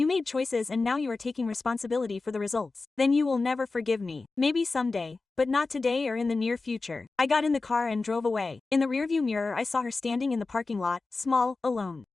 made choices and now you are taking responsibility for the results. Then you will never forgive me. Maybe someday, but not today or in the near future." I got in the car and drove away. In the rearview mirror I saw her standing in the parking lot, small, alone.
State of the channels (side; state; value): right; quieter; 3.8 dB